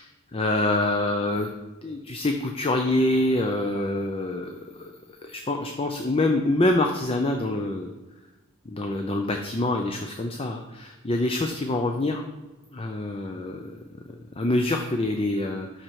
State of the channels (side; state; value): both; normal; correlation 0.54